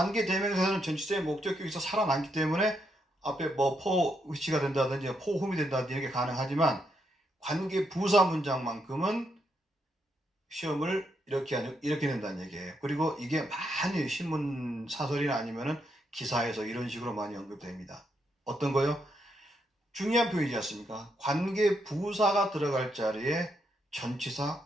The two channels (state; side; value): normal; both; correlation 0.79